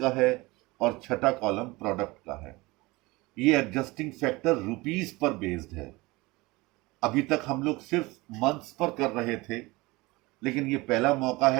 है और छठा कॉलम प्रोडक्ट का है। ये एडजस्टिंग फैक्टर रुपीस पर बेस्ड है। अभी तक हम लोग सिर्फ मंथ्स पर कर रहे थे, लेकिन ये पहला मौका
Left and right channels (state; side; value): quieter; left; 22.5 dB